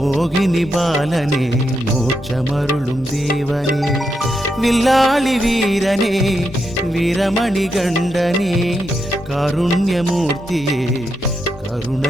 பாலனே, மோட்சமருளும் தேவனே. வில்லாளி வீரனே, வீரமணி கண்டனே, காருண்யமூர்த்தியே,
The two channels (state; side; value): normal; both; correlation 0.83